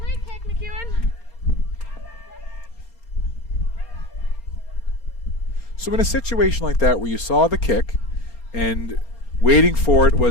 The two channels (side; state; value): right; late; 4.3 ms